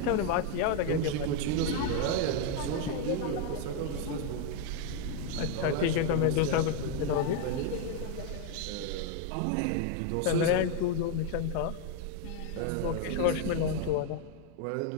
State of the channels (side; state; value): both; different; correlation 0.01